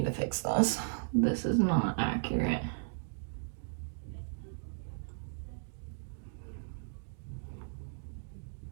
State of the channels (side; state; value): left; silent; digital silence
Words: to fix this. This is not accurate.